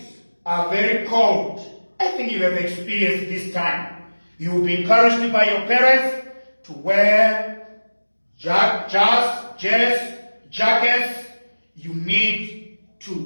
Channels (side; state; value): both; inverted; correlation -1.00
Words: are very cold. I think you have experienced this time. You will be encouraged by your parents to wear jackets. You need